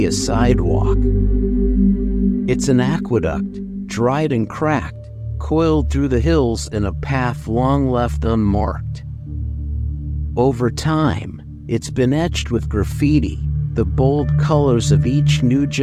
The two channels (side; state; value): both; identical; correlation 1.00